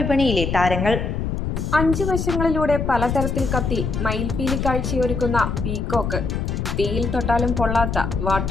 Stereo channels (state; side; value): noise; left; rumble, 2 dB below the sound